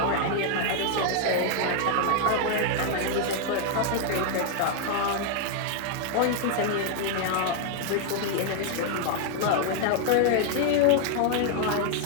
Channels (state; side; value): different; both; correlation 0.00